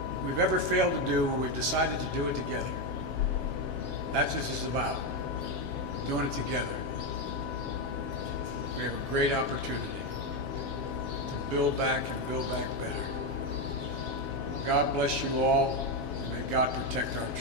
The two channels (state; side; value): late; right; 7.4 ms